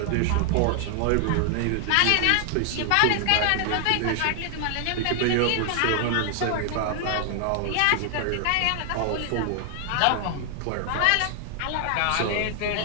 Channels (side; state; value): both; different; correlation 0.00